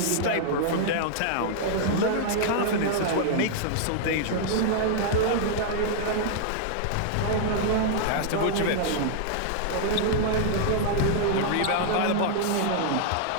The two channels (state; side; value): different; both; correlation -0.01